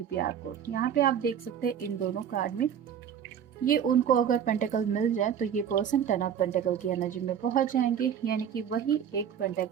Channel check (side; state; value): left; quieter; 8.6 dB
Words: प्यार को। यहाँ पे आप देख सकते हैं इन दोनों कार्ड में ये उनको अगर पेंटेकल मिल जाए तो ये पर्सन 10 ऑफ पेंटेकल की एनर्जी में पहुंच जाएंगे, यानी कि वही एक